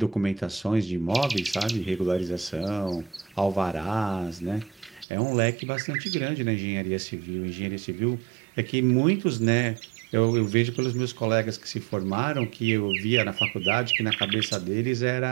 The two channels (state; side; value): drops out; left; at 5.1 s